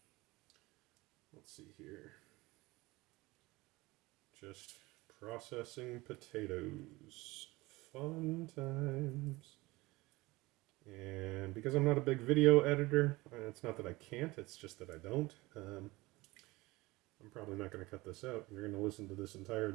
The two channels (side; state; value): left; quieter; 21.3 dB